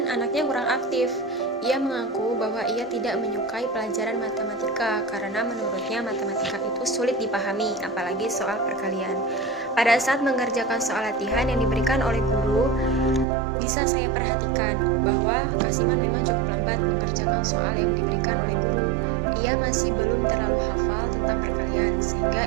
anaknya kurang aktif. Ia mengaku bahwa ia tidak menyukai pelajaran matematika karena menurutnya matematika itu sulit dipahami, apalagi soal perkalian. Pada saat mengerjakan soal latihan yang diberikan oleh guru, bisa saya perhatikan bahwa Kasiman memang cukup lambat mengerjakan soal yang diberikan oleh guru. Ia masih belum terlalu hafal tentang perkalian,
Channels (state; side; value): drops out; left; at 13.2 s